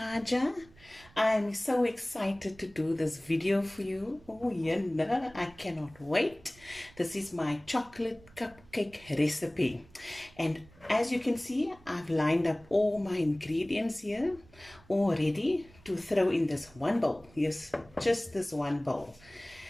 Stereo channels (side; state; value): right; noise; rumble, 25 dB below the sound